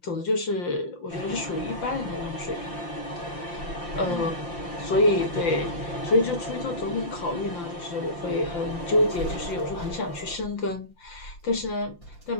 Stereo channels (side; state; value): right; late; 5.8 ms